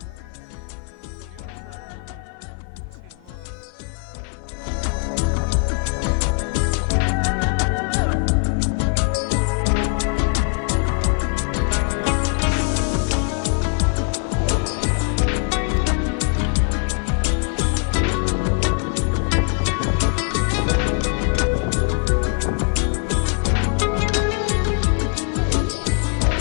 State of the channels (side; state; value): right; quieter; 38.1 dB